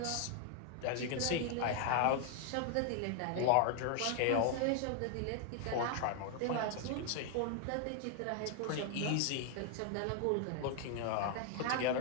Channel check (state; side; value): different; both; correlation 0.00